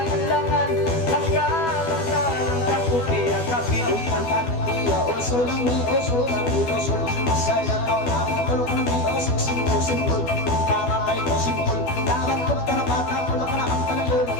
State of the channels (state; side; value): late; right; 12 ms